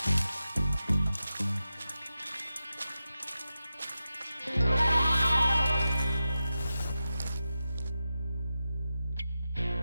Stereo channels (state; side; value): inverted; both; correlation -0.92